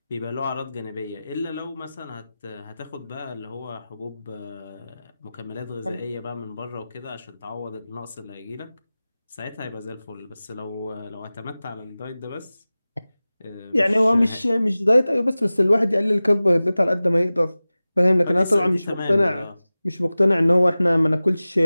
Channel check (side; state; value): both; inverted; correlation -0.97